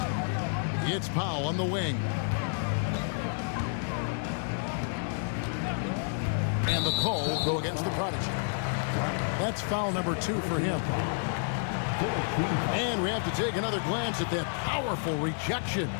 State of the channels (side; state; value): right; silent; digital silence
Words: It's Powell on the wing. And the call will go against the Prodigy. That's foul number 2 for him. And we have to take another glance at that powerful rejection.